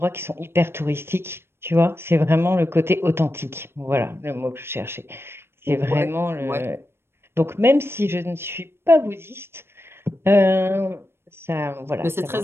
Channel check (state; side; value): late; left; 0.12 ms